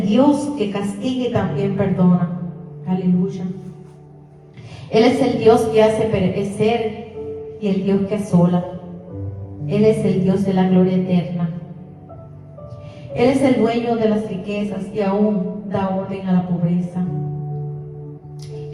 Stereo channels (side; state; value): both; identical; correlation 1.00